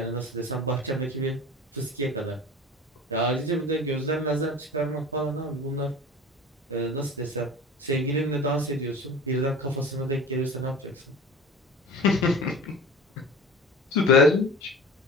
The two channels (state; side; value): normal; both; correlation 0.37